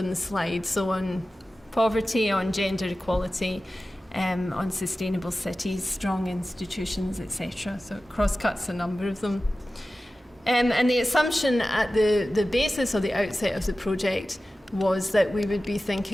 the slide, so on poverty, on gender equality, on sustainable cities, strong institutions, etc. So it cross-cuts a number of them. And the assumption at the basis or the outset of the project was that we would be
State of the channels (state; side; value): normal; both; correlation 0.95